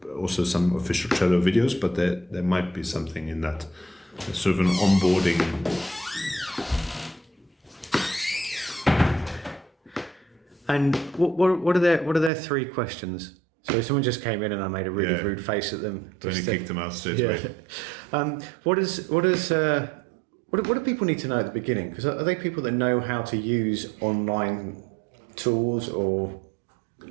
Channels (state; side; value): drops out; left; at 12.3 s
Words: also some official Trello videos, but there might be something in that. It's sort of an onboarding. And what are their 3 questions? So if someone just came in and I made a really rude face at them, Then you kicked them out straight away. What do people need to know at the beginning? Because are they people that know how to use online tools or?